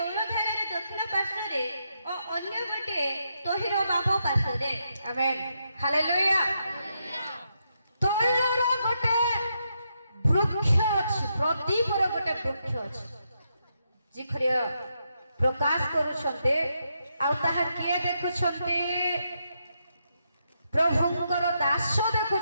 रे दक्षिण पार्श्वरे और अन्य गोटे तोहिर बाम पार्श्वरे आमेन हालेलुया तैलर गोटे वृक्ष अछि प्रदीपर गोटे वृक्ष अछि जिखरिया प्रकाश करूछन्ते आ ताहा किए देखुछन्ते प्रभुंकर दास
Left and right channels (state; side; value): inverted; both; correlation -0.81